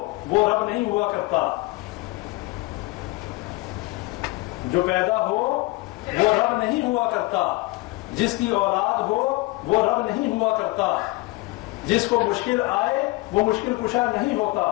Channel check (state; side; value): quieter; right; 22.2 dB